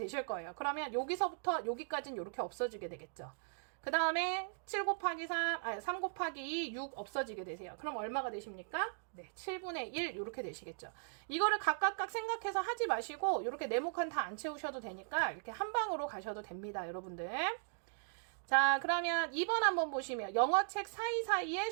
거예요. 그러면 여기서부터 여기까지는 이렇게 없어지게 되겠죠. 그 다음에 3 곱하기 2, 6 없어지게 되세요. 그럼 얼마가 되십니까? 네, 7분의 1 이렇게 되시겠죠. 이거를 각각 생각해서 하지 마시고 이렇게 네모칸 다 안 채우셔도 되니까 이렇게 한 방으로 가셔도 됩니다, 여러분들. 자, 그러면 2번 한번 보시면 영어책 사이사이에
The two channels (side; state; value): left; silent; digital silence